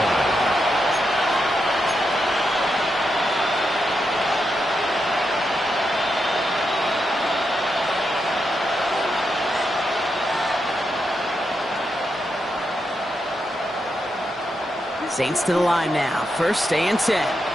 Saints to the line now. First and 10.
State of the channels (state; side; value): normal; both; correlation 0.84